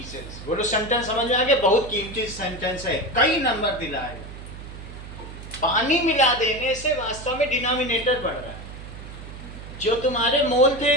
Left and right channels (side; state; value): right; noise; hum, 13 dB below the sound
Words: बोलो sentence समझ में आ गया? बहुत कीमती सेंटेंस है, कई नंबर दिलाए। पानी मिला देने से वास्तव में डिनोमिनेटर बढ़ रहा है। जो तुम्हारे मोल थे